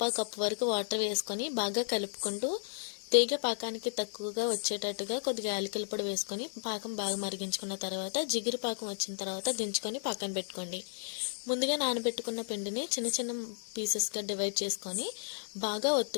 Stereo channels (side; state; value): right; silent; digital silence